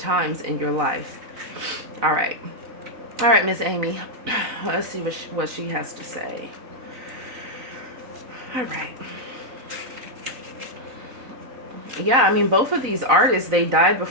in your life. All right. All right, Miss Amy. Let's see what she has to say. All right. Yeah, I mean, both of these artists, they died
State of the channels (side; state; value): left; late; 4.0 ms